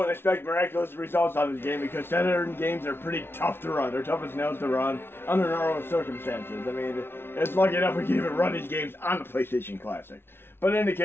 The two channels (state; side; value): late; right; 0.11 ms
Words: expect miraculous results on this game because Saturn games are pretty tough to run. They're tough as nails to run under normal circumstances. I mean, it's lucky enough we can even run these games on the PlayStation Classic. But in any